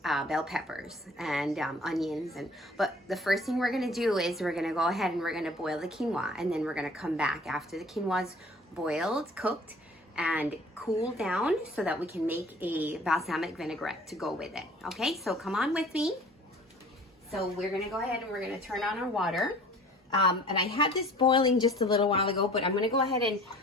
bell peppers and onions. But the first thing we're going to do is we're going to go ahead and we're going to boil the quinoa, and then we're going to come back after the quinoa's boiled, cooked, and cool down so that we can make a balsamic vinaigrette to go with it. Okay, so come on with me. So we're gonna go ahead and we're gonna turn on our water. And I had this boiling just a little while ago, but I'm gonna go ahead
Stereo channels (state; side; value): normal; both; correlation 0.49